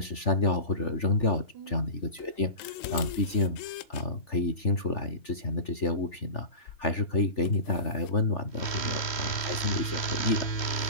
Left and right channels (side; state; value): right; late; 3.1 ms